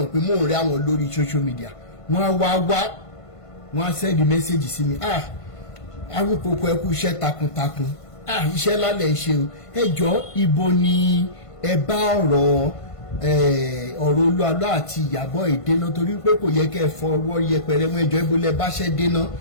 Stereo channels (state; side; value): late; right; 1.5 ms